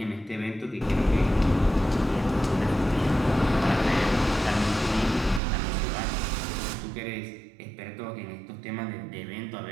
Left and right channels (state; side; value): drops out; left; at 5.4 s